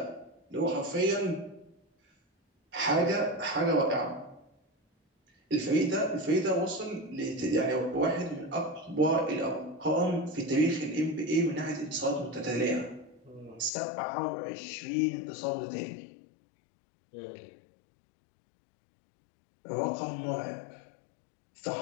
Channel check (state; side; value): drops out; right; at 13.7 s